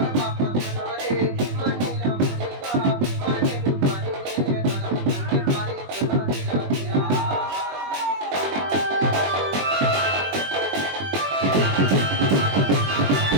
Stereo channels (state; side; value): late; left; 21 ms